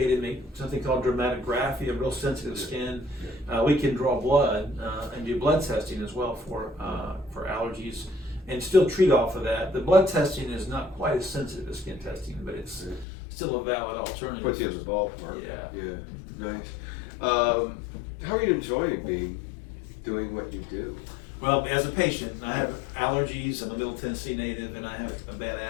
make something called dermatography, a real sensitive skin. We can draw blood and do blood testing as well for allergies, and still treat off of that. The blood testing is not quite as sensitive as skin testing, but it's still a valid alternative. Puts you in the ballpark. Yeah. Nice. How are you enjoying doing what you do? Well, as a patient, I have allergies. I'm a Middle Tennessee native, and I have a bad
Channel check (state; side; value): drops out; right; at 13.1 s